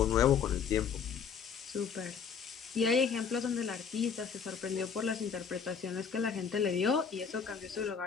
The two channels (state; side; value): quieter; right; 6.6 dB